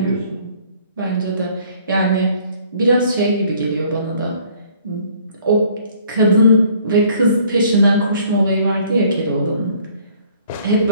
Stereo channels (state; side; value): inverted; both; correlation -0.58